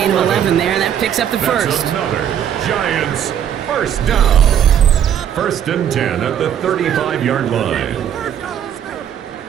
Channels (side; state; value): left; quieter; 9.4 dB